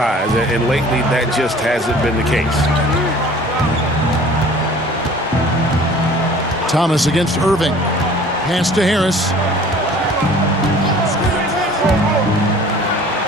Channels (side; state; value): both; normal; correlation 0.48